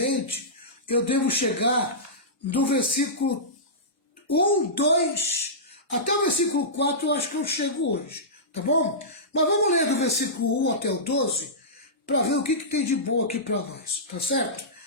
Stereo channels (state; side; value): normal; both; correlation -0.17